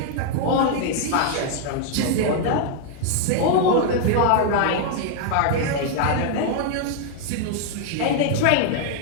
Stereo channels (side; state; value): both; different; correlation 0.00